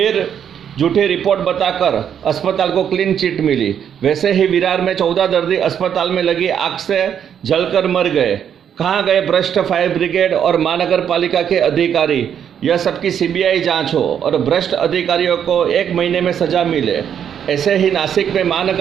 झूठी रिपोर्ट बताकर अस्पताल को क्लीन चिट मिली। वैसे ही विरार में 14 दर्दी अस्पताल में लगी आग से जलकर मर गए। कहाँ गए भ्रष्ट फायर ब्रिगेड और महानगर पालिका के अधिकारी। यह सबकी सीबीआई जांच हो और भ्रष्ट अधिकारियों को 1 महीने में सजा मिले। ऐसे ही नासिक में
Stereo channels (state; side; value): quieter; left; 8.7 dB